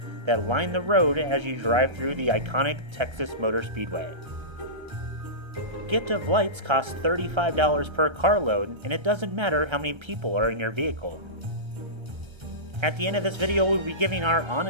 that line the road as you drive through the iconic Texas Motor Speedway. Gift of Lights costs $35 per carload, and it doesn't matter how many people are in your vehicle. At the end of this video, we'll be giving our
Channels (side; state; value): left; late; 1.3 ms